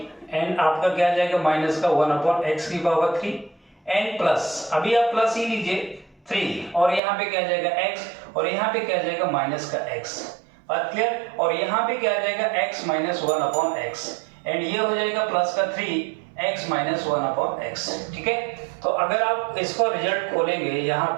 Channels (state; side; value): drops out; left; at 7.0 s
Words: एंड आपका क्या आ जाएगा माइनस का 1/x की पावर 3 एंड प्लस, अभी आप प्लस ही लीजिए 3 और यहाँ पे क्या आ जाएगा x और यहाँ पे क्या आ जाएगा माइनस का x। बात क्लियर? और यहाँ पे क्या आ जाएगा x माइनस 1/x एंड ये हो जाएगा प्लस का 3x माइनस 1/x। ठीक है, तो अगर आप इसको रिजल्ट खोलेंगे यहाँ